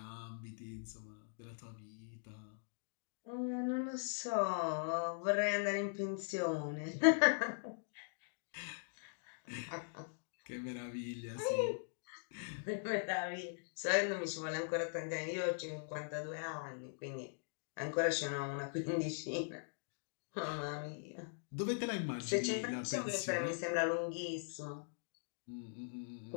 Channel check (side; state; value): right; silent; digital silence